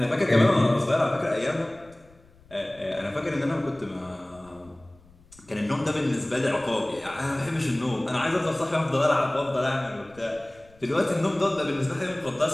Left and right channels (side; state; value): left; noise; rumble, 27 dB below the sound